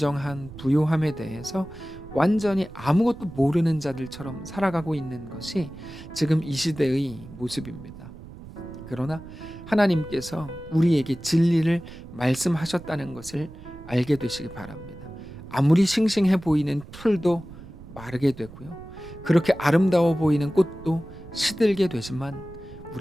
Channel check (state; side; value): noise; right; rumble, 16 dB below the sound